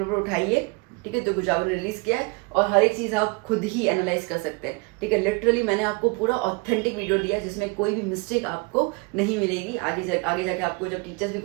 उठाइए, ठीक है, जो गुजरात ने रिलीज किया है, और हर एक चीज़ आप खुद ही एनालाइज कर सकते हैं, ठीक है। लिटरली मैंने आपको पूरा ऑथेंटिक वीडियो दिया जिसमें कोई भी मिस्टेक आपको नहीं मिलेगी। आगे जाके आपको जब टीचर्स भी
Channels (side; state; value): left; quieter; 28.9 dB